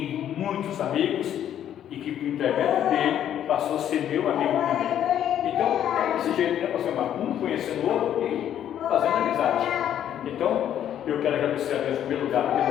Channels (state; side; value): quieter; right; 10.4 dB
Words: muitos amigos e que por intermédio dele passou a ser meu amigo também. Então, é desse jeito, né, pastor Marcos? Um conhecendo o outro e fazendo amizade. Então, eu quero agradecer a Deus em primeiro lugar